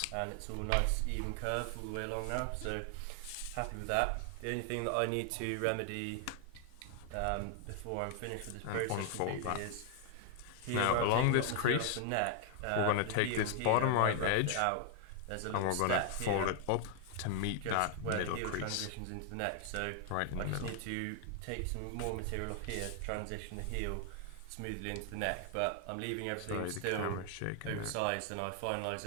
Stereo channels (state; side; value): different; both; correlation 0.00